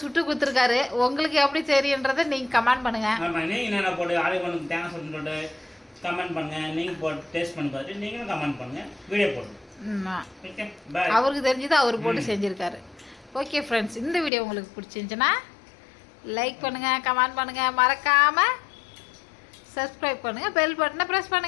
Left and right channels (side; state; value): right; drops out; at 14.3 s